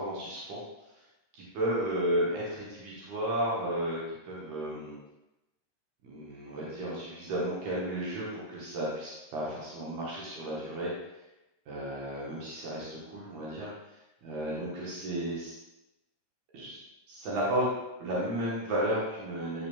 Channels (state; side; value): late; left; 13 ms